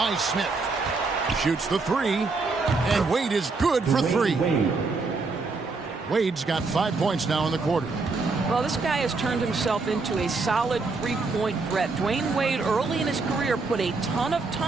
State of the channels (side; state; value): left; quieter; 4.0 dB